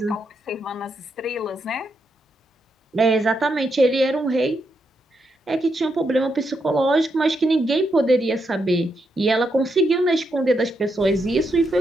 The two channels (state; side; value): normal; both; correlation 0.81